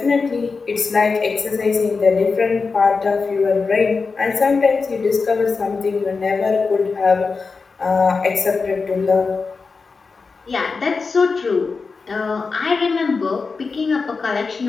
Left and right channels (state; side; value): quieter; right; 4.6 dB